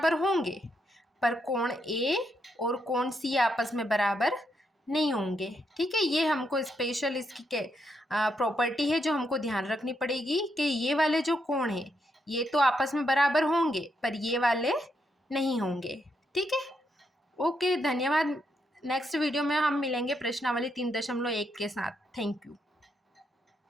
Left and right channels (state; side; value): normal; both; correlation 0.79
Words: होंगे, पर कोण A और कोण C आपस में बराबर नहीं होंगे। ठीक है, ये हमको स्पेशल इसकी प्रॉपर्टी है जो हमको ध्यान रखनी पड़ेगी कि ये वाले जो कोण है ये तो आपस में बराबर होंगे पर ये वाले नहीं होंगे। ठीक है, ओके, धन्यवाद। नेक्स्ट वीडियो में हम मिलेंगे प्रश्नावली 3.1 के साथ। Thank you.